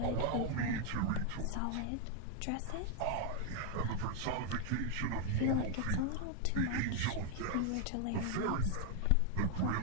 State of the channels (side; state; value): both; different; correlation 0.00